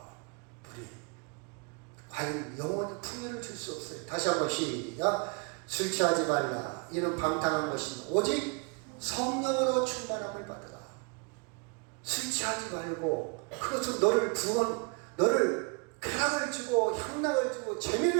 무료. 과연 영원히 풍요를 줄 수 없어요. 다시 한번 시작. 술 취하지 말라. 이는 방탕한 것이니 오직 성령으로 충만함을 받으라. 술 취하지 말고 그것은 너를 쾌락을 주고 향락을 주고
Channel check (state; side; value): quieter; left; 32.9 dB